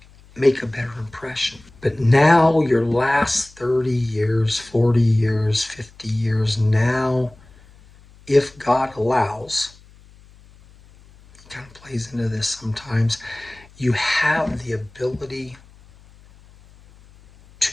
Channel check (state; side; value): noise; left; hum, 26 dB below the sound